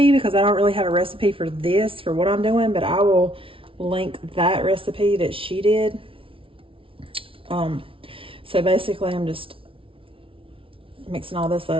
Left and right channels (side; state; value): left; late; 0.26 ms